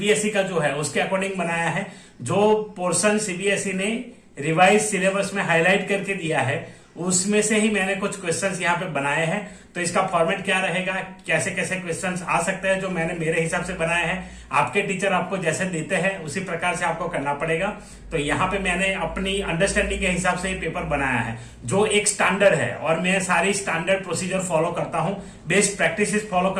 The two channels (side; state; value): both; identical; correlation 1.00